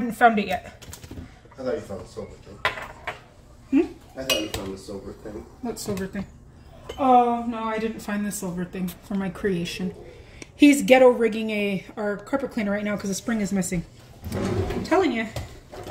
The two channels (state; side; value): identical; both; correlation 1.00